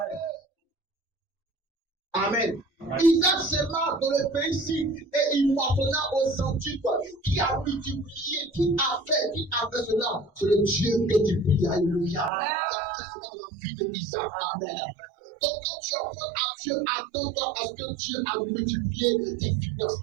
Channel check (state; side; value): drops out; left; at 12.3 s